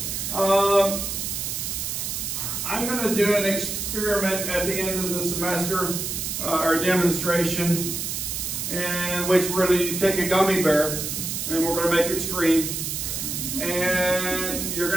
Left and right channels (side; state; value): right; noise; hiss, 3 dB below the sound